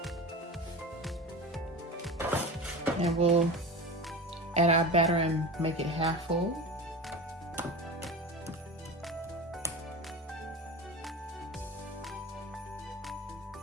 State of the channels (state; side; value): normal; both; correlation 0.29